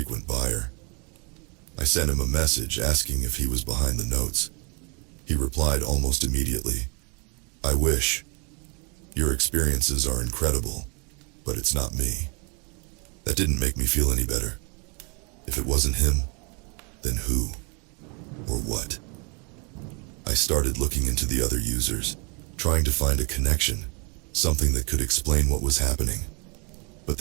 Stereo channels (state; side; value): quieter; left; 33.2 dB